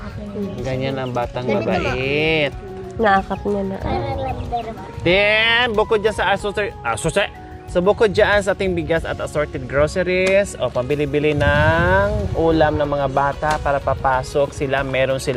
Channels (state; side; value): identical; both; correlation 1.00